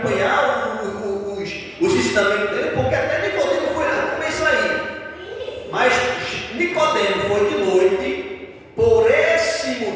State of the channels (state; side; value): identical; both; correlation 1.00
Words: os ensinamentos dele? Porque até Nicodemo foi lá, como é isso aí? Mas Nicodemo foi de noite, por esse